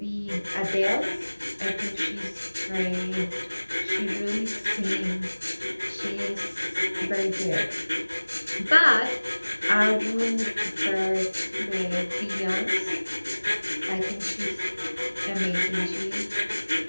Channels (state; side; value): inverted; both; correlation -1.00